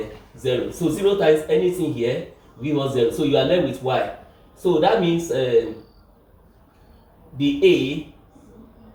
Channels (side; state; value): both; identical; correlation 1.00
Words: 0. So 0 times anything here give us 0. So you are left with y. So that means the A,